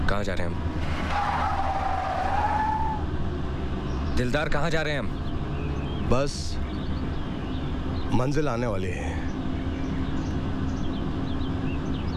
कहाँ जा रहे हैं हम? दिलदार कहाँ जा रहे हैं हम? बस मंजिल आने वाली है।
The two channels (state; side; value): identical; both; correlation 1.00